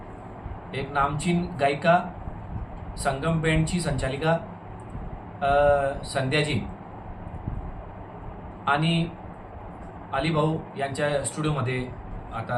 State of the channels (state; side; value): identical; both; correlation 1.00